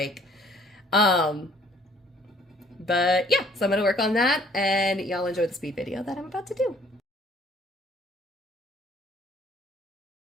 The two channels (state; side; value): normal; both; correlation 0.59